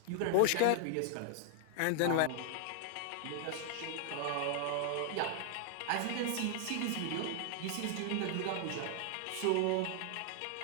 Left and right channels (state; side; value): different; both; correlation 0.00